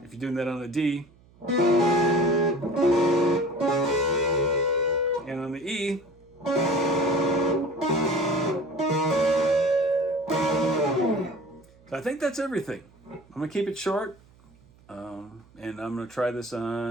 If you're doing that on a D, and on the E, so I think that's everything. I'm gonna keep it short, and I'm gonna try this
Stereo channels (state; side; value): noise; right; hum, 28 dB below the sound